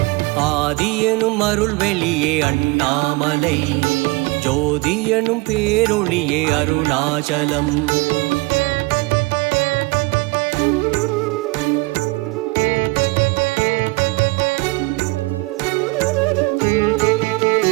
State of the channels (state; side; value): quieter; left; 25.0 dB